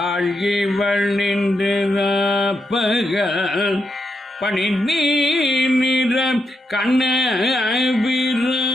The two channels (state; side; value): normal; both; correlation 0.83